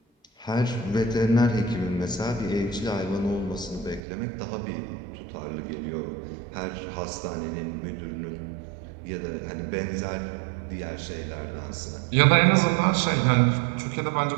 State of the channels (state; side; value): drops out; left; at 4.0 s